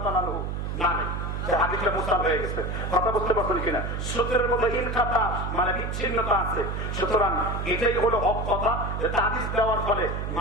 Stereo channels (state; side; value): noise; right; hum, 3 dB below the sound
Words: তাআলা আনহা, মানে যে হাদিসটা মুরসাল হয়ে গেছে। কথা বুঝতে পারছেন কিনা? সূত্রের মধ্যে ইনকাতা মানে বিচ্ছিন্নতা আছে। সুতরাং এটাই হলো হক কথা, যে তাবিজ দেওয়ার ফলে